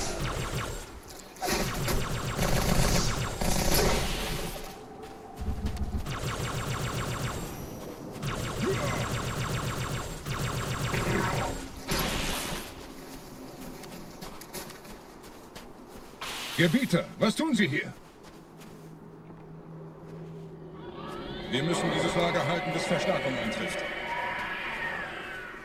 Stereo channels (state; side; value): identical; both; correlation 1.00